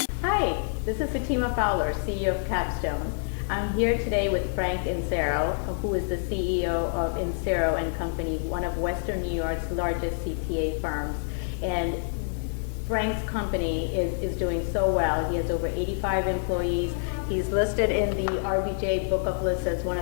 this is Sitima Fowler, CEO of Capstone. I'm here today with Frank Insero, who is the CEO of Insero and Company, one of Western New York's largest CPA firms. And Frank's company is doing so well. He has over 85 employees. He's listed in the RBJ Book of Lists as one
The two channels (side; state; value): right; silent; 60 dB below the other